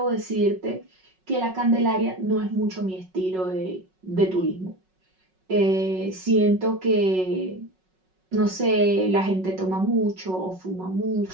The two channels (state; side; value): late; left; 5.4 ms